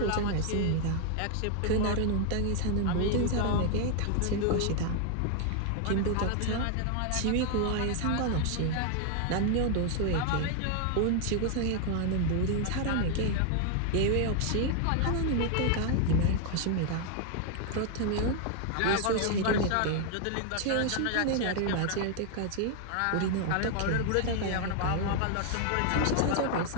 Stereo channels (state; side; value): different; both; correlation 0.00